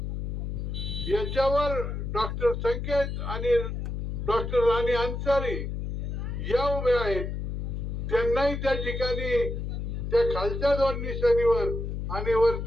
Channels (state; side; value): noise; left; hum, 4 dB below the sound